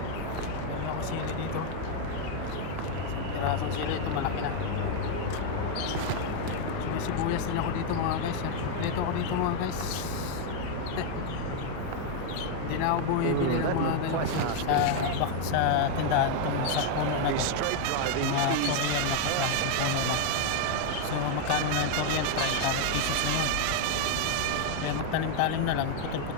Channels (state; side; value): different; both; correlation 0.01